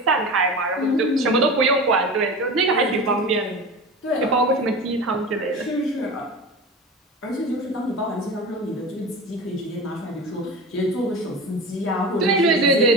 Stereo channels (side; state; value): both; normal; correlation 0.30